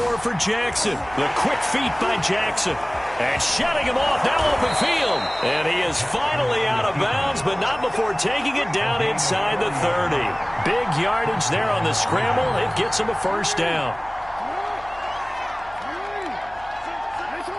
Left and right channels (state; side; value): noise; left; hum, 23 dB below the sound